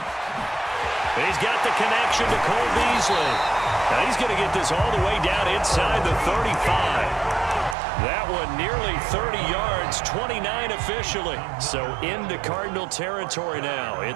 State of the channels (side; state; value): left; drops out; at 7.8 s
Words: He's got the connection to Cole Beasley. Now he's going to get this all the way down inside the 35. That one nearly 30 yards, 29 officially. So into Cardinal territory now.